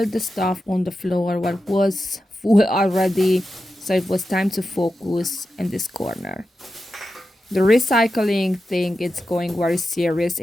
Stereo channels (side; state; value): both; normal; correlation 0.91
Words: the stuff on the floor what was full already, so it was time to focus in this corner. The recycling thing is going very serious